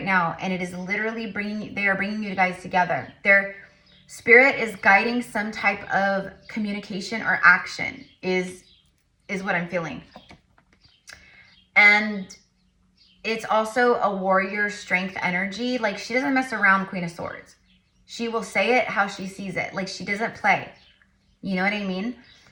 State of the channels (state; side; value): identical; both; correlation 1.00